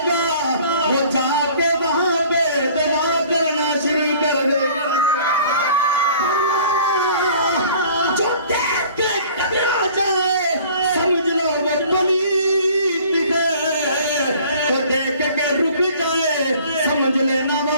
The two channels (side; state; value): both; inverted; correlation -0.50